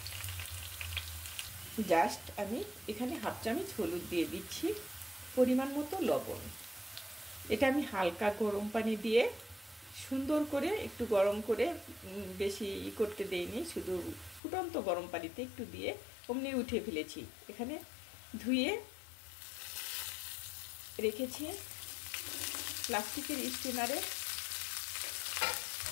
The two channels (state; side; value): drops out; right; at 14.4 s